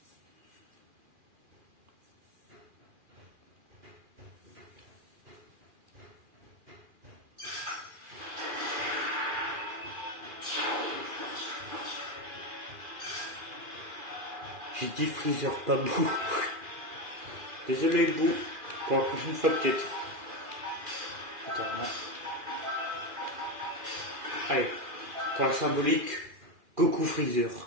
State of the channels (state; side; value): late; left; 2.4 ms